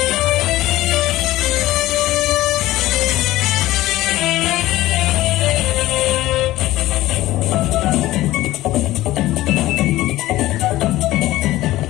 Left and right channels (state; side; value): quieter; right; 16.4 dB